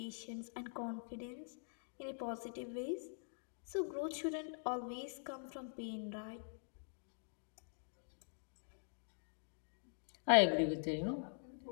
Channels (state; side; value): silent; right; digital silence